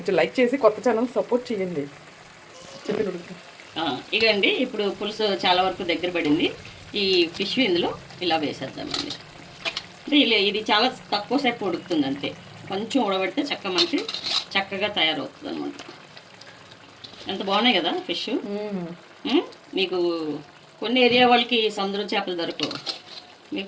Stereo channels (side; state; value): both; identical; correlation 1.00